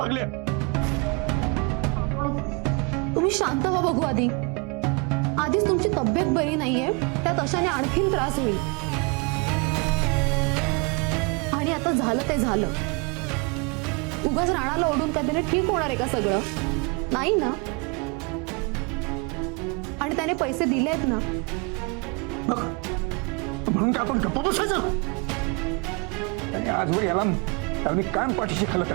तुम्ही शांत व्हा बघू. आधीच तुमची तब्येत बरी नाहीये, त्यात अशाने आणखीन त्रास होईल. आणि आता झालं ते झालं. उगाच राणाला ओढून काय त्याने ठीक होणार आहे का सगळं? नाही ना. आणि त्याने पैसे दिलेत ना. म्हणून का आपण गप्प बसायचं? आणि आजवर याला मी कायम पाठीशी खालत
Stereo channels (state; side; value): quieter; left; 31.0 dB